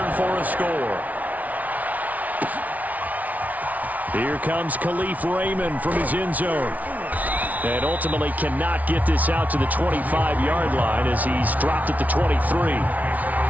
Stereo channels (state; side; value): late; left; 0.073 ms